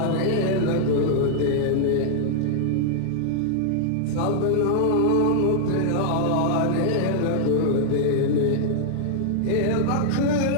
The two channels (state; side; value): different; both; correlation -0.01